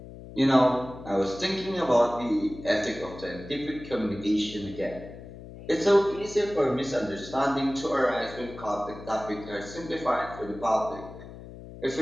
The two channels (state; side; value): noise; left; hum, 14 dB below the sound